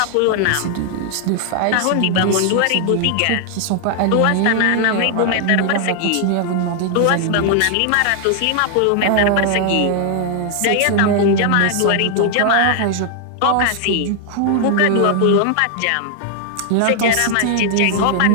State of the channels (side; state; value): both; different; correlation 0.00